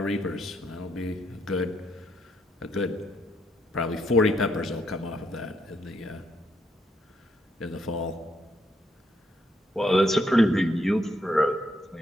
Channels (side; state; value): both; normal; correlation 0.75